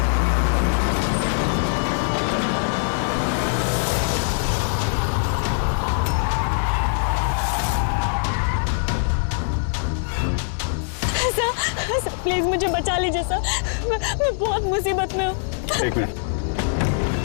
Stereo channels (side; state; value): right; silent; 64 dB below the other